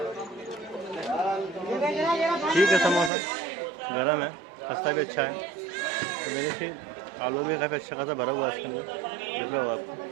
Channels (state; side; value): drops out; left; at 3.1 s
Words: ठीक है, समोसा गरम है, खस्ता भी अच्छा है। तो देखिए आलू भी काफ़ी अच्छा खासा भरा हुआ है इसके अंदर, दिख रहा होगा आपको।